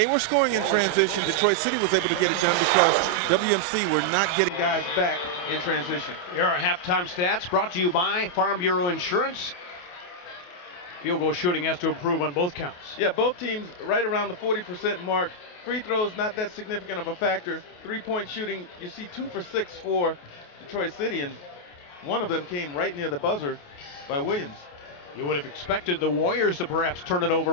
were scoring in transition, Detroit City was able to get it done because WMC were not getting guys back in transition. Here are halftime stats brought to you by Farm Bureau Insurance. Field goal shooting has to improve on both counts. Yeah, both teams right around the 40% mark free throws not that significant of a factor. Three-point shooting, you see 2 for 6 for Detroit City, and one of them came right near the buzzer by Williams. You would have expected the Warriors to perhaps turn it over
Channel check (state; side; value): late; right; 28 ms